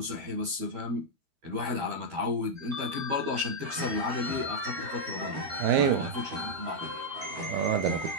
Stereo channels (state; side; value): late; left; 13 ms